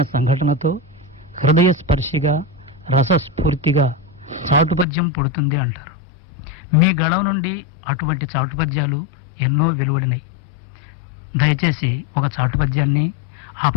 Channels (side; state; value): right; drops out; at 4.9 s